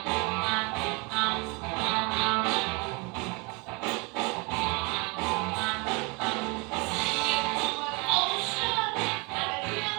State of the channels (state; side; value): quieter; left; 29.4 dB